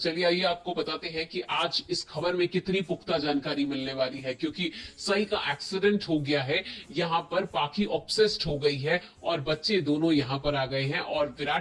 आइए आपको बताते हैं कि आज इस खबर में कितनी पुख्ता जानकारी मिलने वाली है, क्योंकि सही का एक्सीडेंट हो गया है। यहाँ पर पाखी ऑब्सेस्ड हो गई है और बच्चे दोनों यहाँ पर आ गए हैं और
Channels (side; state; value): both; identical; correlation 1.00